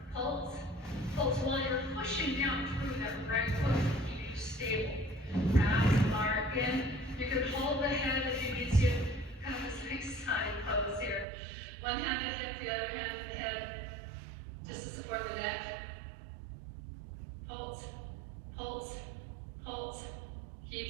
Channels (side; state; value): left; drops out; at 11.2 s